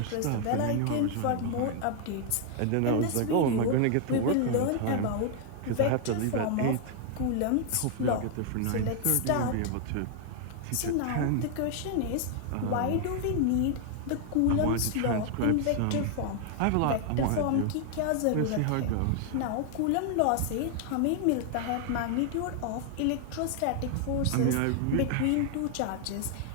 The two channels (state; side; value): different; both; correlation 0.00